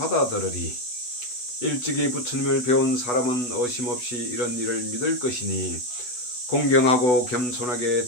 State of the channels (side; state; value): right; late; 8.1 ms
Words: 일찍이 부처님을 배운 사람은 어심없이 이런 일을 믿을 것이니 공경하고 겸손하게